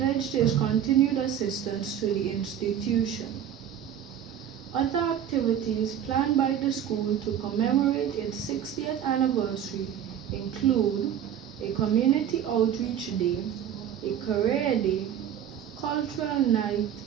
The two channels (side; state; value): left; quieter; 9.6 dB